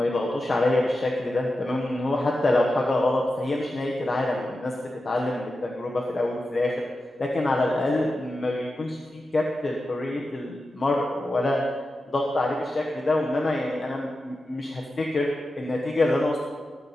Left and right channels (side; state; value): both; normal; correlation 0.91